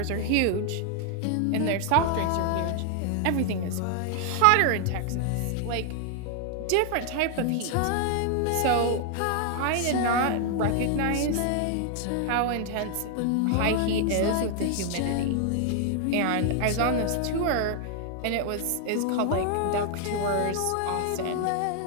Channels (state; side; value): different; both; correlation 0.00